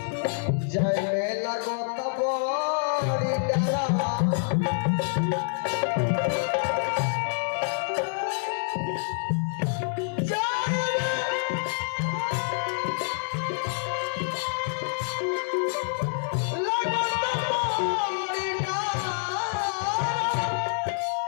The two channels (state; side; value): silent; right; digital silence